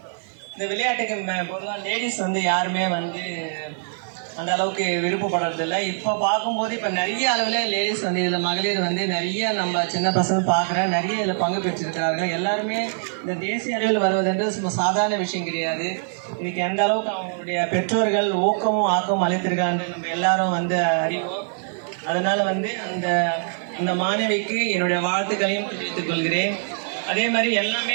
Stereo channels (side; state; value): left; silent; digital silence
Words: விளையாட்டுக்கு பொதுவாக லேடிஸ் யாருமே அந்த அளவுக்கு விருப்பப்படுறதில்லை. இப்போ பார்க்கும்போது இப்போ நிறைய அளவில் லேடிஸ் இதில் மகளிர் நிறைய நம்ம சின்ன பசங்க பார்க்குறேன், நிறைய இதில் பங்கு பெற்றிருக்கிறார்கள். எல்லாருமே இந்த தேசிய அளவில் வருவதென்று சாதாரண விஷயம் கிடையாது. இதுக்கு எந்த அளவுக்கு அவங்களுடைய பெற்றோர்கள் ஊக்கமும் ஆக்கமும் அளித்திருக்காங்க நம்ம எல்லாரும் அறிவோம். அதனால் அந்த மாணவிக்கு என்னுடைய வாழ்த்துக்களையும் தெரிவித்துக் கொள்கிறேன். அதே மாதிரி